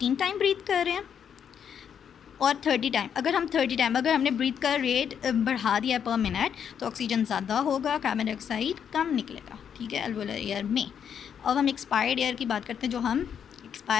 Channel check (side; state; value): right; quieter; 8.1 dB